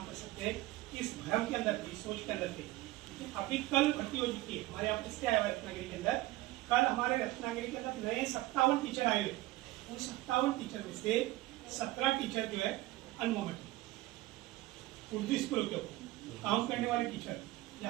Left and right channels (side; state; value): left; quieter; 17.9 dB